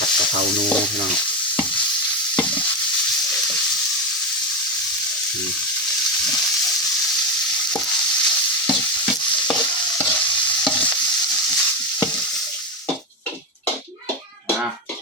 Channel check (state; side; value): normal; both; correlation 0.11